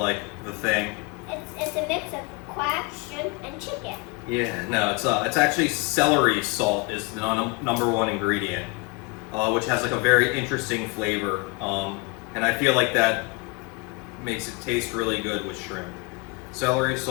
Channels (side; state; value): right; quieter; 28.4 dB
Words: the thing. It's a mix of quack, shrimp, and chicken. Yeah, no, it's actually celery salt is the number 1 ingredient, which has like a very interesting flavor, and I feel like that makes it taste really good with shrimp. Celery,